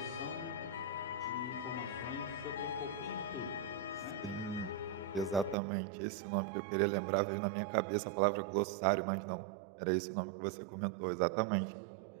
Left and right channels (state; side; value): drops out; left; at 5.6 s